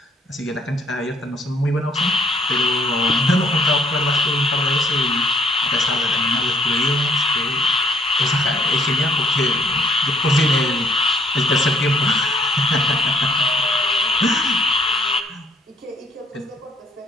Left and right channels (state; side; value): normal; both; correlation 0.64